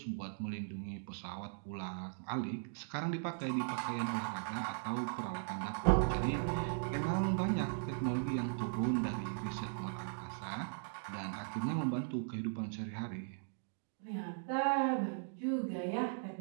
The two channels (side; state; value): left; silent; digital silence